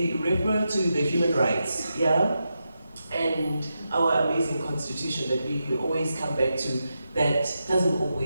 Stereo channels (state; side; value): inverted; both; correlation -0.87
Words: refer to the human rights, and our amazing constitution that we always come back to, that doesn't